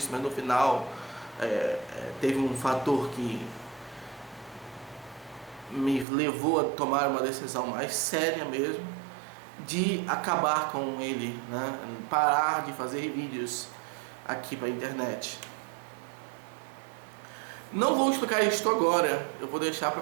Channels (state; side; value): drops out; left; at 6.1 s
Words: mas no final teve um fator que me levou a tomar uma decisão mais séria mesmo, de acabar com ele, né? Parar de fazer vídeos aqui para a internet. Não vou explicar isso agora, eu vou deixar